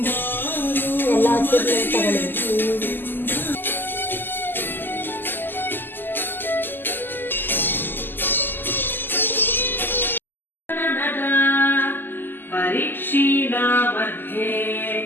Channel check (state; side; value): late; right; 0.093 ms